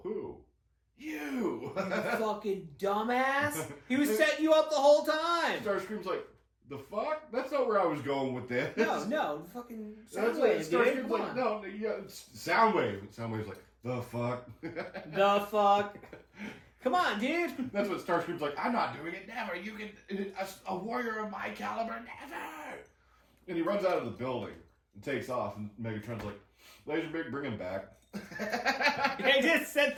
who? You! Fucking dumbass! He was setting you up the whole time! Starscream's like, the fuck? That's not where I was going with this. No, fucking Soundwave, Starscream's like, no, yeah, Soundwave. Soundwave's like, the fuck? The fuck? Come on, dude! That's what Starscream's like, I'm not doing it, never. You can, a warrior of my caliber, never! And he runs out of the building and takes off, and Megatron's like, Laserbeak, bring him back. They just sent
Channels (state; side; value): identical; both; correlation 1.00